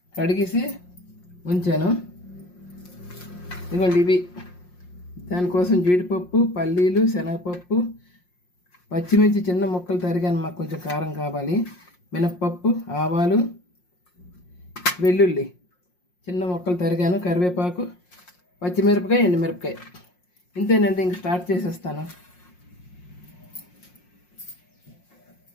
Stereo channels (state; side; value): late; right; 5.6 ms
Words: కడిగేసి ఉంచాను. ఇదిగోండి ఇవి. దానికోసం జీడిపప్పు, పల్లీలు, శనగపప్పు, పచ్చిమిర్చి చిన్న ముక్కలు తరిగాను, మాకు కొంచెం కారం కావాలి. మినప్పప్పు, ఆవాలు, వెల్లుల్లి చిన్న ముక్కలు తరిగాను, కరివేపాకు, పచ్చిమిరపకాయ, ఎండుమిరపకాయ. ఇంతేనండి, ఇంక స్టార్ట్ చేసేస్తాను.